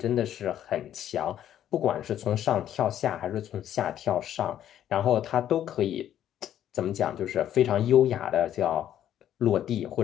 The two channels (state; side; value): quieter; right; 11.0 dB